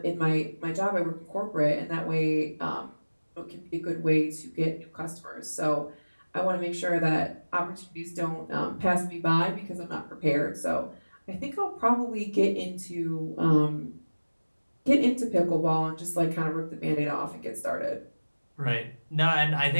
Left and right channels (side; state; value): both; inverted; correlation -1.00